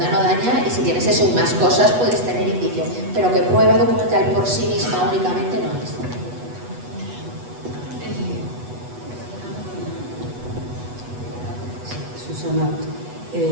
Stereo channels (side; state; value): left; late; 8.2 ms